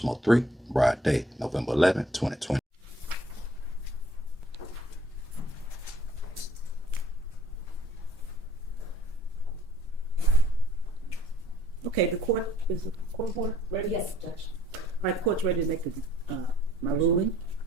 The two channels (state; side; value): normal; both; correlation 0.59